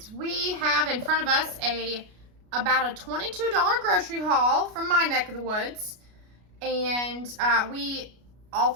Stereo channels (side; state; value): left; late; 33 ms